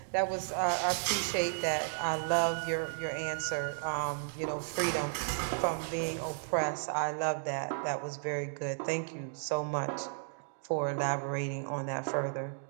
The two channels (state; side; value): silent; left; digital silence